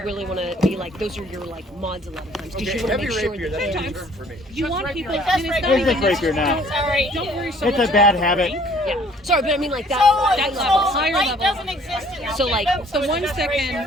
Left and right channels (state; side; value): normal; both; correlation 0.57